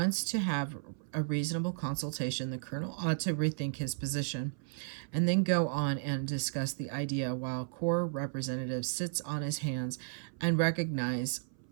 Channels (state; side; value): silent; left; 55 dB below the other